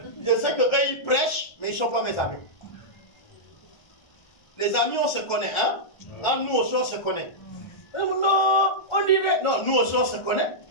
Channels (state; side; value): late; right; 1.3 ms